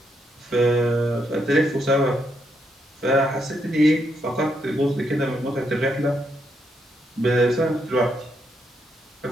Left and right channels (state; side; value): normal; both; correlation 0.78